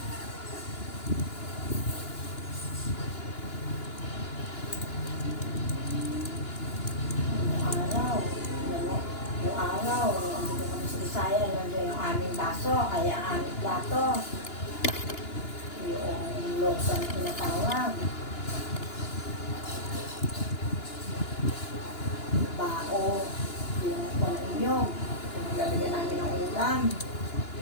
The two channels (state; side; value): late; right; 2.9 ms